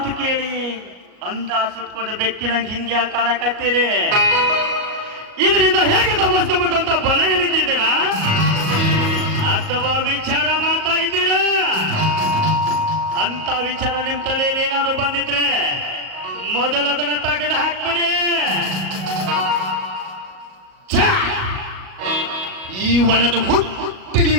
ಕೇಳಿ ಅಂದ ಸುಟ್ಕೊಂಡು ಬೆಕ್ಕಿನಂಗೆ ಹಿಂಗೆ ಕಾಣಕತ್ತೀರಿ? ಇದರಿಂದ ಹೇಗೆ ತಪ್ಪಿಸ್ಕೋಬೇಕು ಅಂತ ಬಲೆ ಎಣಿತಿದ್ದೀರಾ ಅಥವಾ ವಿಚಾರ ಮಾಡ್ತಾ ಇದ್ದೀರಾ? ಅಂತ ವಿಚಾರ ನಿಮ್ ತಲೆಯಲ್ಲಿ ಏನಾದ್ರು ಬಂದಿದ್ರೆ ಮೊದಲು ಅದನ್ನ ತೆಗೆದು ಹಾಕ್ಬಿಡಿ. ಈ ಒಳದ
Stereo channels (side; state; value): left; late; 38 ms